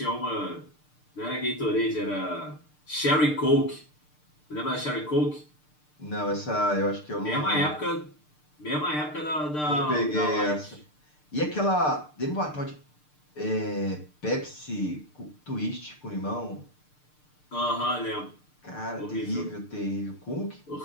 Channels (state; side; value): late; right; 6.7 ms